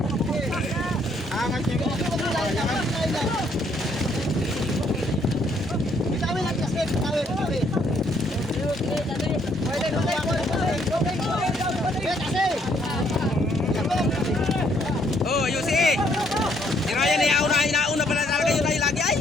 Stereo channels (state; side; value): normal; both; correlation 0.68